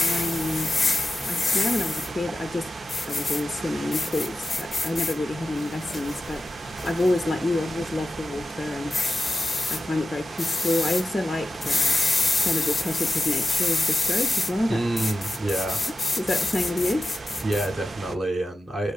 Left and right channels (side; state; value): both; normal; correlation 0.92